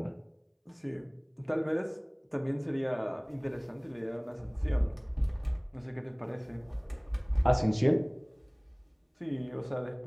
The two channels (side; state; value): both; identical; correlation 1.00